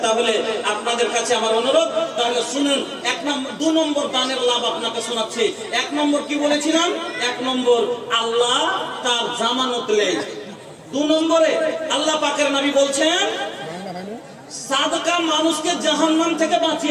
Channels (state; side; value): identical; both; correlation 1.00